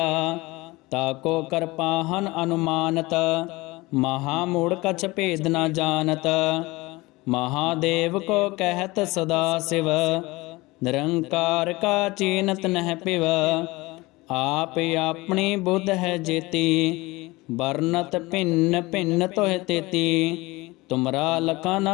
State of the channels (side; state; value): right; quieter; 21.8 dB